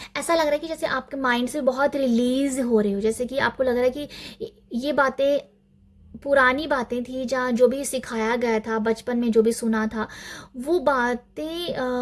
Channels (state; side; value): identical; both; correlation 1.00